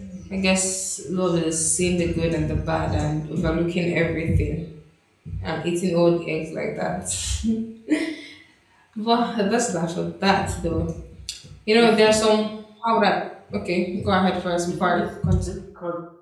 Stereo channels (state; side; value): identical; both; correlation 1.00